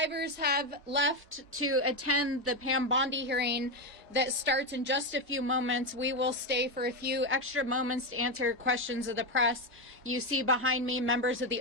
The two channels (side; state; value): both; normal; correlation 0.10